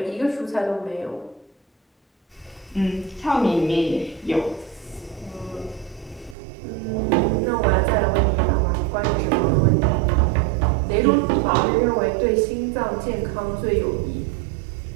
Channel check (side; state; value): left; drops out; at 6.4 s